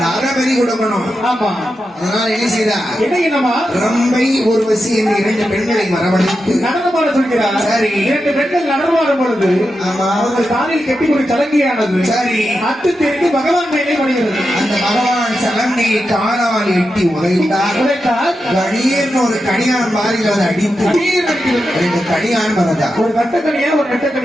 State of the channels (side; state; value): both; normal; correlation 0.89